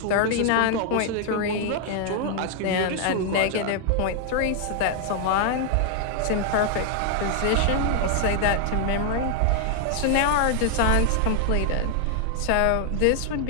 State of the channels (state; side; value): different; both; correlation 0.00